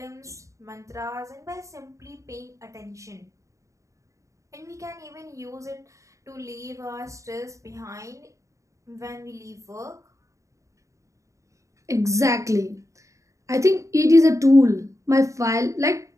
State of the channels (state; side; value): late; left; 0.15 ms